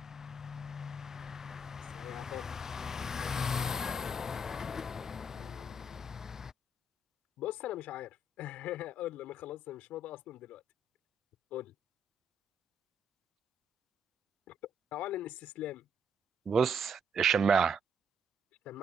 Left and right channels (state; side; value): normal; both; correlation 0.71